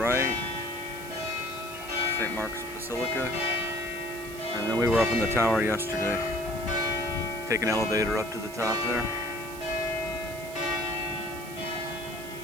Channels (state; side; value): noise; right; hiss, 15 dB below the sound